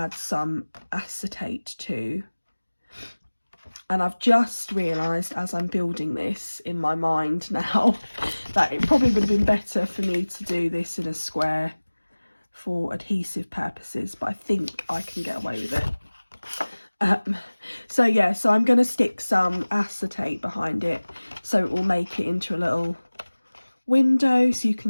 some acetate to. And I've just realised as I'm building this in my mind now that it probably would have been better for me to do this in a square for adhesive purposes, but I think I can get away with it. So yeah, so I'm going to stick some acetate behind it so it will make it into a little window so you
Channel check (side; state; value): both; inverted; correlation -1.00